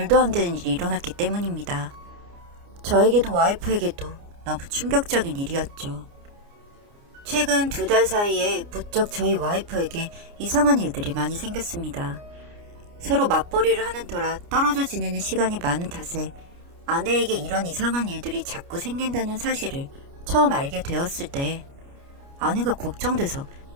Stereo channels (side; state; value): left; late; 29 ms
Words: 안 되는 일이 일어났기 때문입니다. 저에게도 와이프에게도 너무 충격적인 일이었죠. 최근 2달 사이에 부쩍 저희 와이프에게 이상한 일들이 많이 생겼습니다. 서로 맞벌이를 하는 터라 떨어져 지내는 시간이 많은 탓에 아내에게 이런 이상한 일들이 자꾸 생긴다는 사실을 처음 알게 되었을 때 아내가 걱정돼서